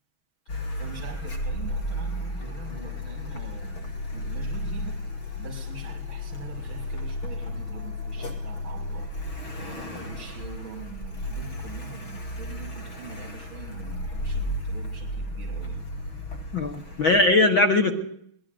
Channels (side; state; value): right; late; 6.3 ms